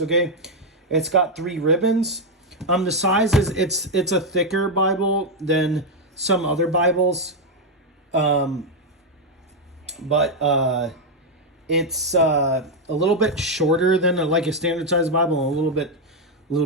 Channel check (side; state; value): both; normal; correlation 0.02